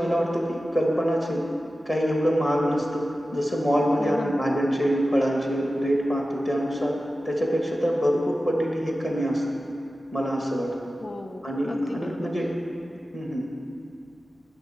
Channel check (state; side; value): normal; both; correlation 0.94